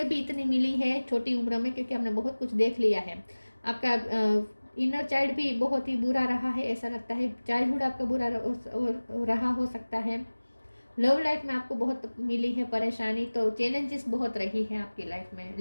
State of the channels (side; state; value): both; inverted; correlation -1.00